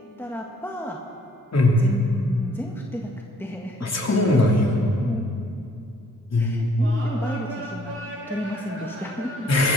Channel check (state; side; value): normal; both; correlation 0.62